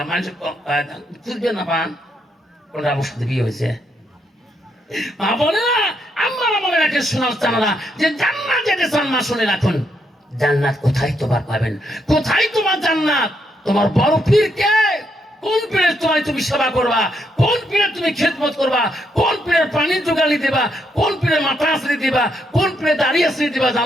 মানুষ খুঁজবে না পান কোনটা আমার সাথে বিয়ে হয়েছে। মা বলে না আমার মনে রাখে শোনার জানা যে জান্নাত যেতে চান মা শুনে রাখুন। জান্নাত কোথায় তোমার পাবেন? কোথায় তোমার জান্নাত? তোমার বড় পীর কে? কোন পীরের তোমায় তুমি সেবা করবা? কোন পীরের তুমি খেদমত করবা? কোন পীরের পানি জোগালি দেবা? কোন পীরের মাথা আশ্রয় দিবা? কোন পীরের দাড়ি আশ্রয় দিবা?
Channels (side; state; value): both; normal; correlation 0.77